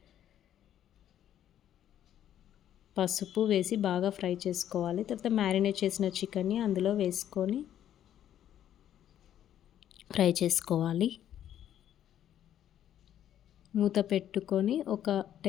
పసుపు వేసి బాగా ఫ్రై చేసుకోవాలి. తర్వాత మ్యారినేట్ చేసిన చికెన్ని అందులో వేసుకొని ఫ్రై చేసుకోవాలి. మూత పెట్టుకొని ఒక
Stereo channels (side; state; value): right; quieter; 10.8 dB